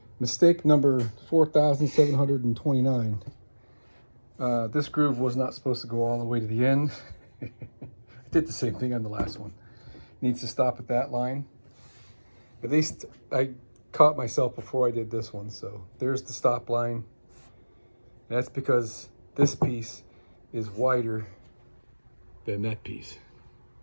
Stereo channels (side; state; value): both; inverted; correlation -1.00